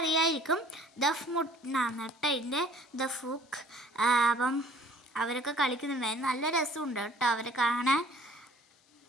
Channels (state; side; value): normal; both; correlation 0.53